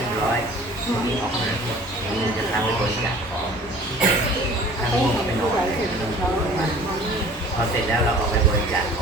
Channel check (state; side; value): normal; both; correlation 0.48